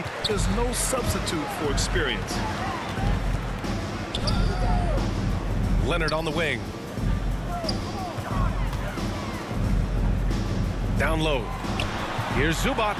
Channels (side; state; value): both; identical; correlation 1.00